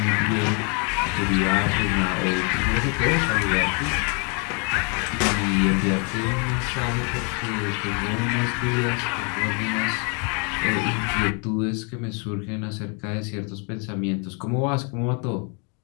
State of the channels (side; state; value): right; quieter; 36.2 dB